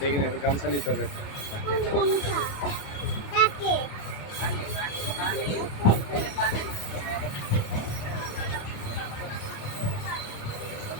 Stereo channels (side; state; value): right; late; 28 ms